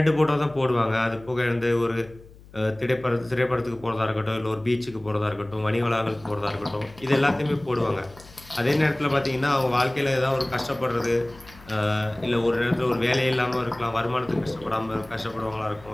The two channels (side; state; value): left; noise; hum, 22 dB below the sound